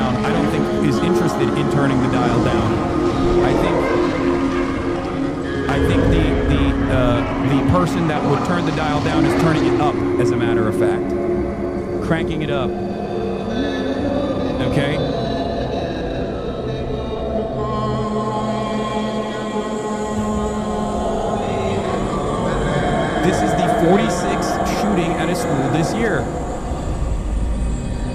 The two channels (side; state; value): both; identical; correlation 1.00